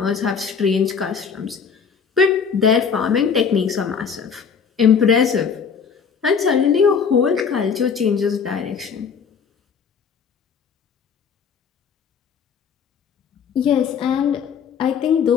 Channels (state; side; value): quieter; right; 6.4 dB